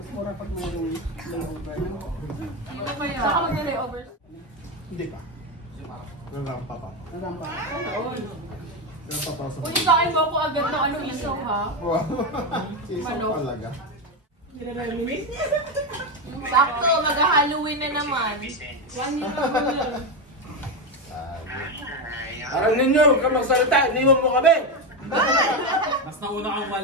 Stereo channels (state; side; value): normal; both; correlation 0.11